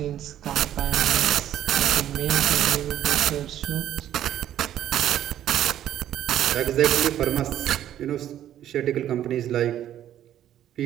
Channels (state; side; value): quieter; left; 11.5 dB